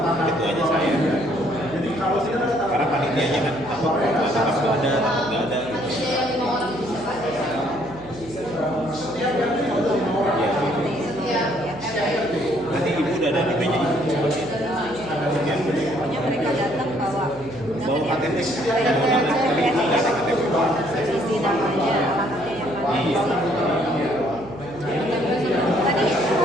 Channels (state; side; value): noise; right; hum, 18 dB below the sound